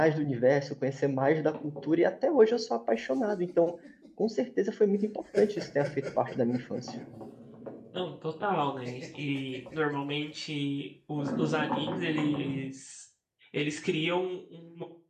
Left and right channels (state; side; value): identical; both; correlation 1.00